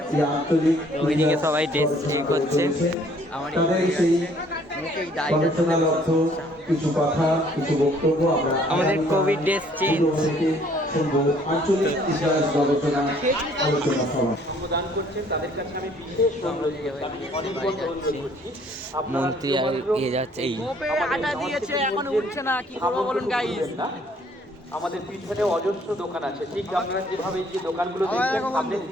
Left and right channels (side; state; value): both; normal; correlation 0.60